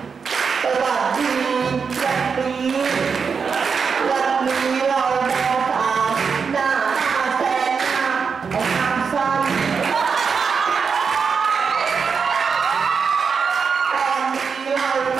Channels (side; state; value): left; quieter; 5.8 dB